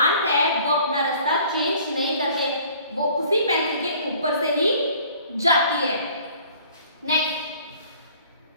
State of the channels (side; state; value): both; inverted; correlation -0.53